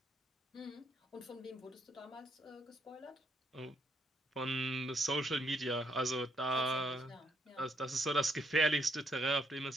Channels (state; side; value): normal; both; correlation 0.73